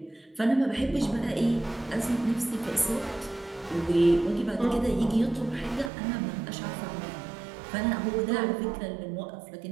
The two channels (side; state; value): left; drops out; at 5.9 s